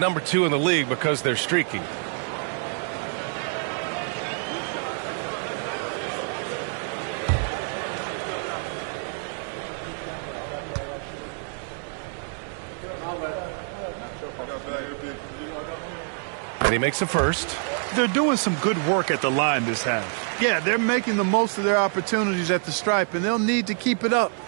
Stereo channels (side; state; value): left; silent; 55 dB below the other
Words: 2 in the league because they're streaky. And he makes the first. They're doing some good work at the line this half. Yeah, they're making the most of their opportunities at the stripe, and they'll need to keep it up